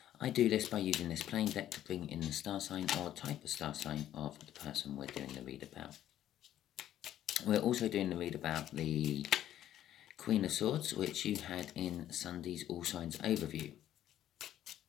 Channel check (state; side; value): quieter; right; 12.0 dB